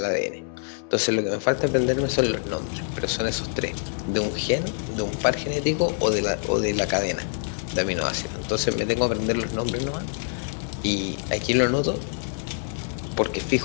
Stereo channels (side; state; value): right; silent; digital silence